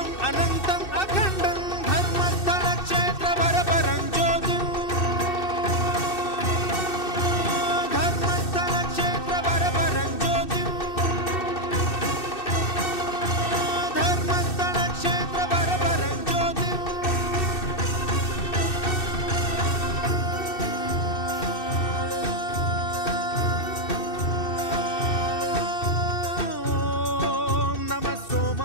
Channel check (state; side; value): late; right; 2.6 ms